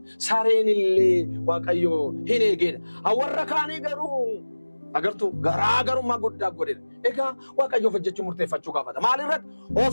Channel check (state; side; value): inverted; both; correlation -1.00